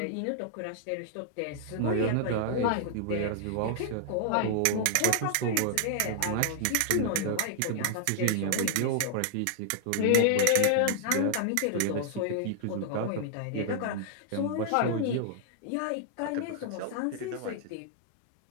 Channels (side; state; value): both; different; correlation 0.00